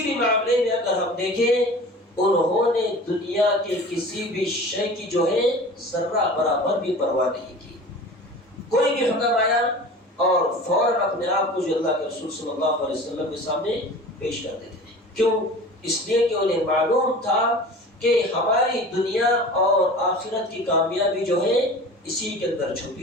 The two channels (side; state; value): both; normal; correlation 0.39